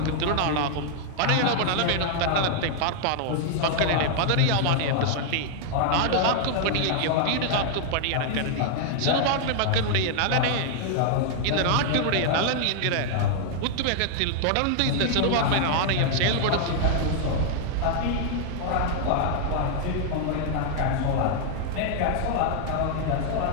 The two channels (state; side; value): different; both; correlation 0.00